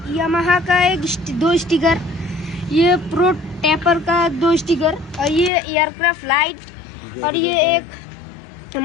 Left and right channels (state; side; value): drops out; right; at 5.5 s